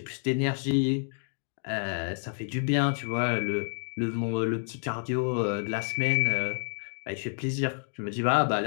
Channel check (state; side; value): silent; right; 55 dB below the other